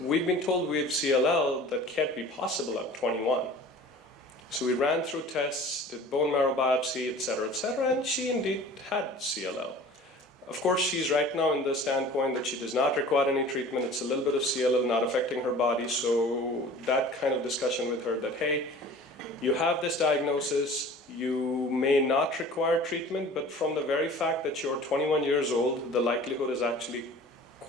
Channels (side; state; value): both; normal; correlation 0.43